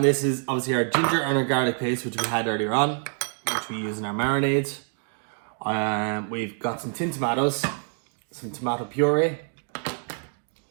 this is obviously our ginger and our garlic paste, which we had earlier on, which we use in our marinades. We've got some tin tomatoes, some tomato puree,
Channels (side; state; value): left; silent; 56 dB below the other